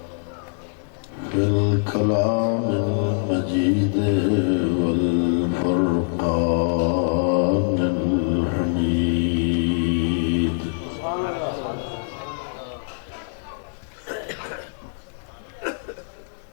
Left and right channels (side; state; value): right; silent; digital silence